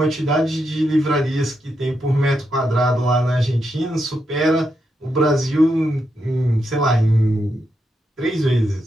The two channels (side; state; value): both; normal; correlation 0.83